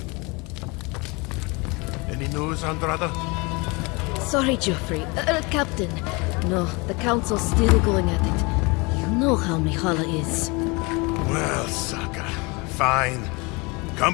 Andrada? Sorry, Geoffrey. Captain. No, the Council's still going at it. You know how Mihala is. Well, Saka, fine.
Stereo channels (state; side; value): quieter; right; 27.4 dB